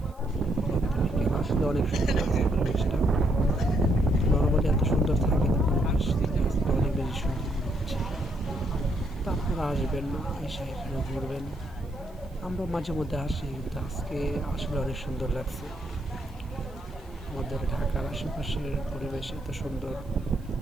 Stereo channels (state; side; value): noise; right; hiss, 30 dB below the sound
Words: বিকেল আসলে অনেক সুন্দর লাগছে পরিবেশটা। নর্মালি এত সুন্দর থাকে না পরিবেশ, আজকে অনেক বেশি সুন্দর মনে হচ্ছে। তো আপনারা আসবেন, এসে এখানে ঘুরবেন। আমরা মাঝে মধ্যে আসি, কিন্তু আজকে আসলে অনেক সুন্দর লাগছে। আমাদের ঢাকার আশেপাশের পরিবেশ এত সুন্দর,